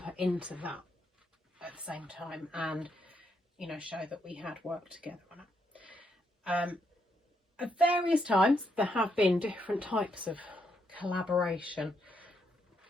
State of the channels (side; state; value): both; normal; correlation 0.77